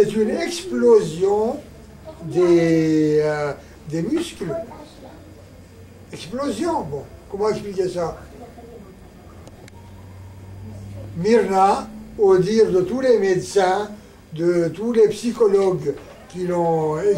une explosion des muscles. Explosion, bon, comment expliquer ça? Myrna, au dire de tous les médecins, de tous les psychologues qui l'ont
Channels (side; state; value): both; identical; correlation 1.00